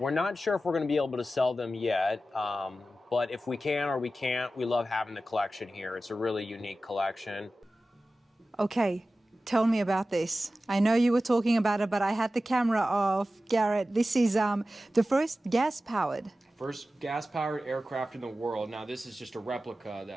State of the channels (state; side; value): normal; both; correlation 0.94